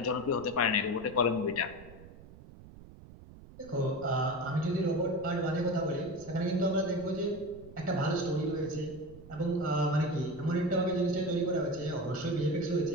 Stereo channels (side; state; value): right; noise; rumble, 18 dB below the sound